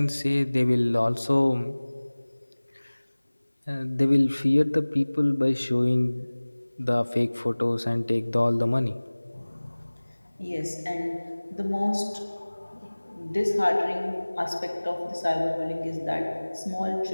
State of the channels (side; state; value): both; inverted; correlation -1.00